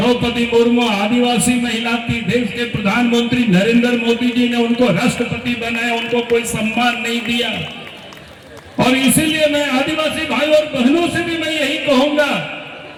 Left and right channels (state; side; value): identical; both; correlation 1.00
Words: मुर्मू आदिवासी महिला थी। देश के प्रधानमंत्री नरेंद्र मोदी जी ने उनको राष्ट्रपति बनाया, उनको कोई सम्मान नहीं दिया। और इसीलिए मैं आदिवासी भाई और बहनों से भी मैं यही कहूंगा